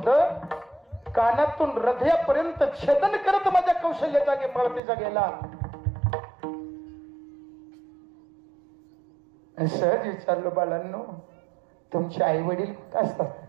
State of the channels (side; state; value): left; drops out; at 4.8 s